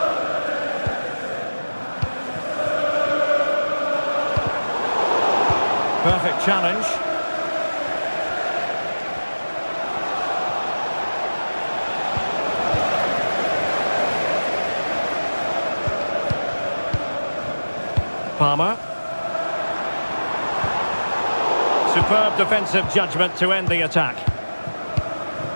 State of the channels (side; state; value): both; inverted; correlation -1.00